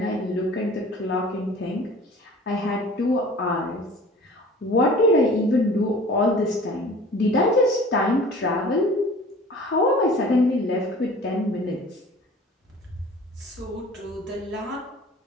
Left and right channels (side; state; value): both; normal; correlation 0.45